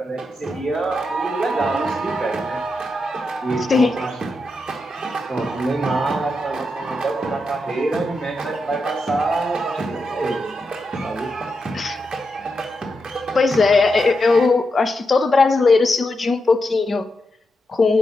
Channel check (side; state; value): both; normal; correlation 0.86